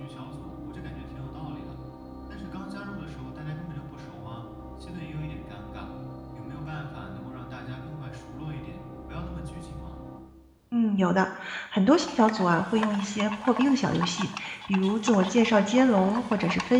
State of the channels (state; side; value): identical; both; correlation 1.00